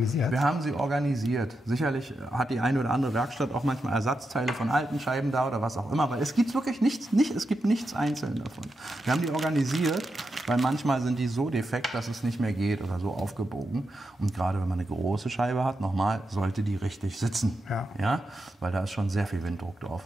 Wir haben sie organisiert. Sicherlich hat die eine oder andere Werkstatt auch manchmal Ersatzteile von alten Scheiben da oder was auch immer. Aber es gibt wirklich nichts, es gibt nichts einzeln davon. Wir haben die organisiert, weil manchmal sind die so defekt, dass es nicht mehr geht oder so aufgebogen. Und gerade wenn man eine große Scheibe hat, nochmal, sollte die richtig sitzen. Ja? Weil da ist schon sehr viel Winddruck drauf.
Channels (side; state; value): both; normal; correlation 0.87